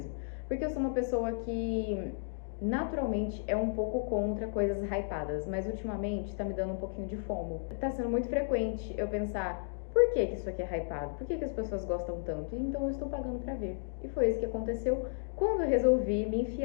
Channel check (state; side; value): silent; right; digital silence